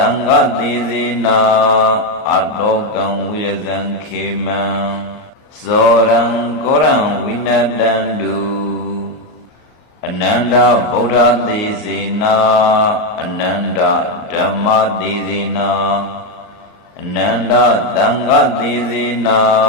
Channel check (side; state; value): right; late; 38 ms